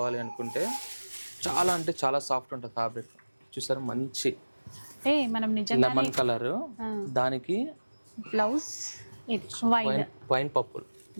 అనుకుంటే చాలా అంటే చాలా సాఫ్ట్ ఉంటుంది ఫ్యాబ్రిక్. చూసారు, మంచి అంటే మనం నిజంగా లెమన్ కలర్, దానికి బ్లౌజ్ వైన్ వైన్ పర్పుల్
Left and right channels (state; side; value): inverted; both; correlation -1.00